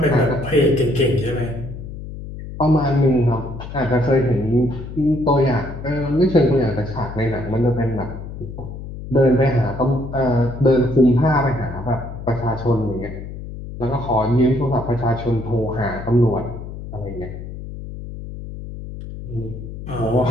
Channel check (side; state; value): left; noise; hum, 10 dB below the sound